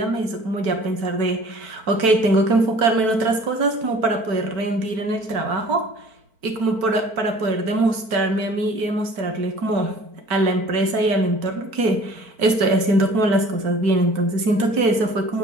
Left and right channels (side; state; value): left; late; 4.5 ms